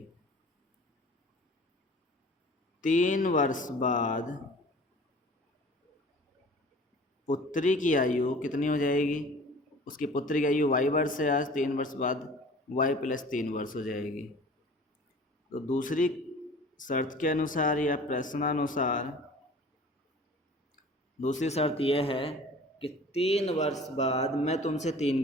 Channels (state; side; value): normal; both; correlation 0.45